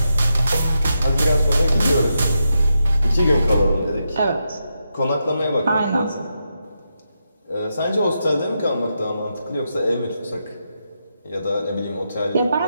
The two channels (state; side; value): inverted; both; correlation -0.85